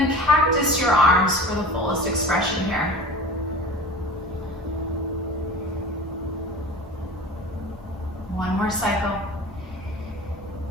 cactus your arms for the fullest expression here. One more cycle.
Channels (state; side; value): normal; both; correlation 0.36